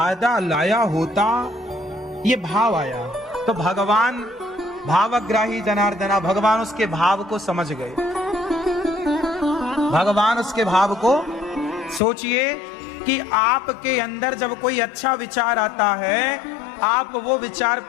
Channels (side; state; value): right; drops out; at 12.0 s